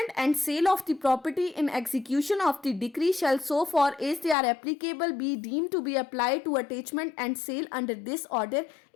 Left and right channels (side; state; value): right; drops out; at 4.4 s